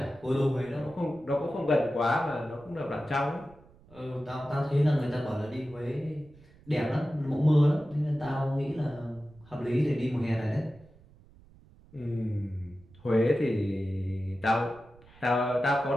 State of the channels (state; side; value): noise; right; rumble, 25 dB below the sound